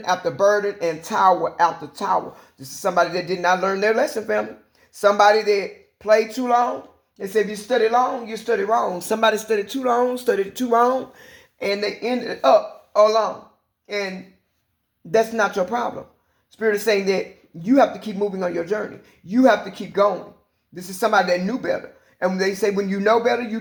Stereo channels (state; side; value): identical; both; correlation 1.00